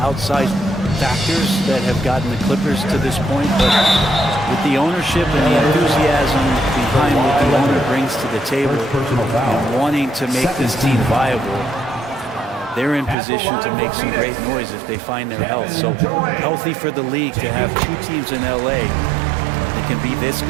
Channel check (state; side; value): drops out; left; at 13.2 s